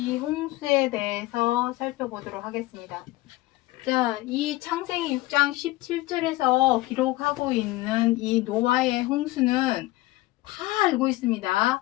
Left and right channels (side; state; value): right; quieter; 19.1 dB